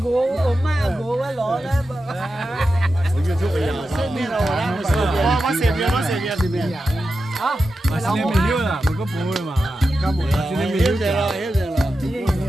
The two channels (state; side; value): normal; both; correlation 0.91